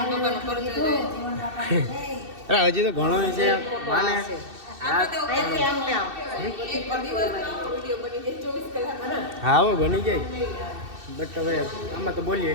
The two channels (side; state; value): left; late; 2.7 ms